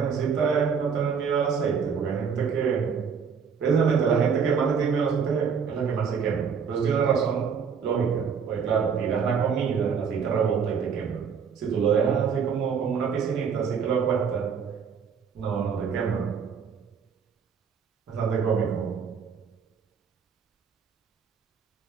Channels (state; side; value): quieter; left; 6.5 dB